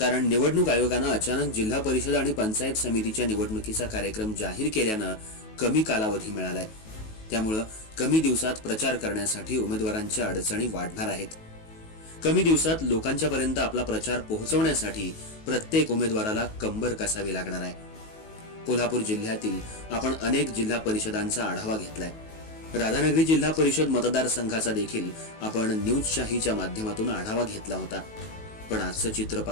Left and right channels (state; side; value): late; right; 19 ms